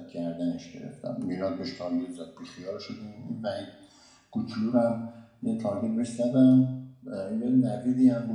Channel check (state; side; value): identical; both; correlation 1.00